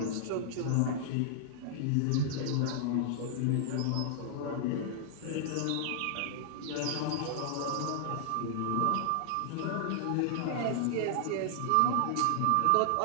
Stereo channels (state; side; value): different; both; correlation -0.01